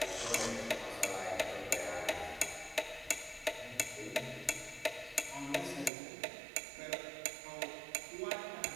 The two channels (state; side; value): drops out; left; at 5.9 s